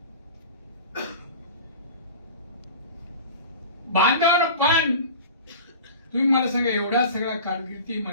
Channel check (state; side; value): inverted; both; correlation -0.37